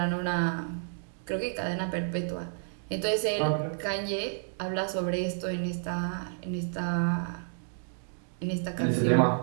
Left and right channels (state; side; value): silent; left; digital silence